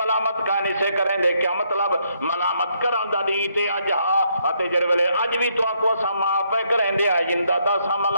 ملامت کا نہیں سے کریں دے، کیا مطلب ملامت کران دا دی تے اج ہا اتے جڑے ویلے اج بھی تو آکو اساں معاف پے کریں دے، آئندہ دا اساں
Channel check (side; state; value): both; inverted; correlation -0.74